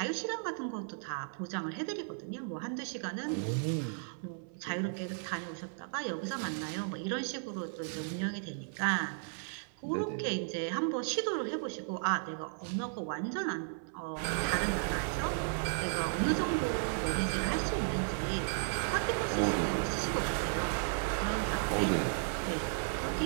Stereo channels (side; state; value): left; silent; 55 dB below the other